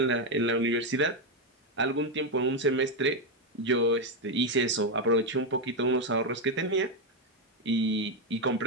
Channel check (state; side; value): normal; both; correlation 0.05